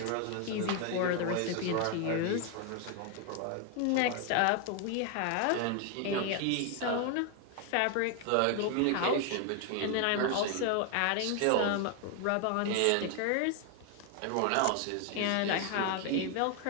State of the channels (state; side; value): different; both; correlation 0.01